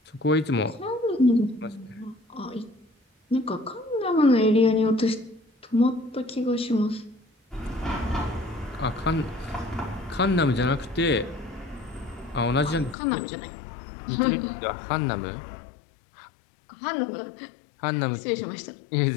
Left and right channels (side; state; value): right; drops out; at 13.0 s